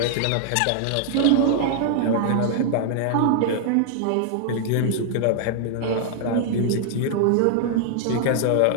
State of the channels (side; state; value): both; different; correlation -0.01